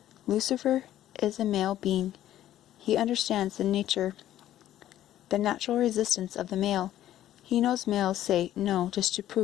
Lucifer is a male being. He understands the natural resistance of the male. He knows males say no just to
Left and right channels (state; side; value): quieter; right; 12.7 dB